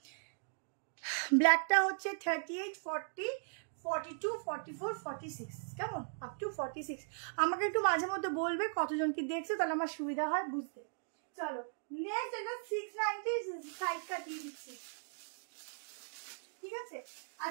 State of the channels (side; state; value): left; silent; digital silence